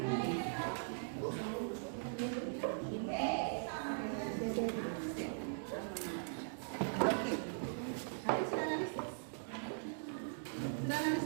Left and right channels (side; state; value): left; silent; digital silence